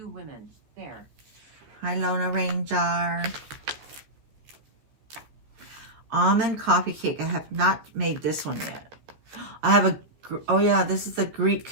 women, there." Hi Lona Ranger. Almond coffee cake. I have not made this one yet. I have oh yeah, this is the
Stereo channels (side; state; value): left; late; 14 ms